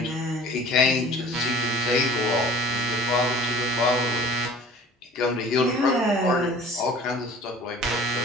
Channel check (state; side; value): normal; both; correlation 0.45